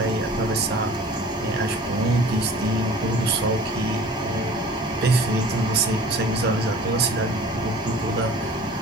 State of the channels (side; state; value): both; normal; correlation 0.45